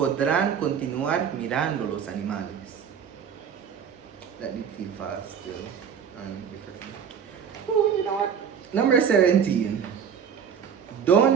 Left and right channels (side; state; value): left; quieter; 7.6 dB